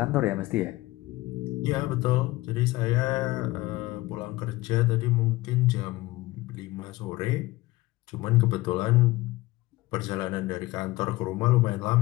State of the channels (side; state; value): right; quieter; 19.5 dB